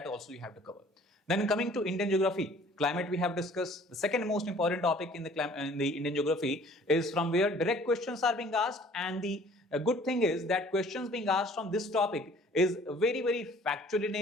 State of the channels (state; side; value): normal; both; correlation 0.54